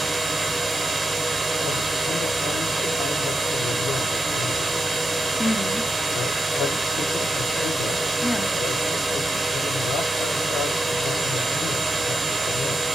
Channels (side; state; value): right; noise; rumble, 25 dB below the sound